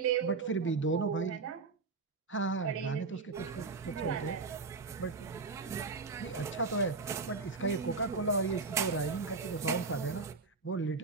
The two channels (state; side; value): quieter; left; 4.3 dB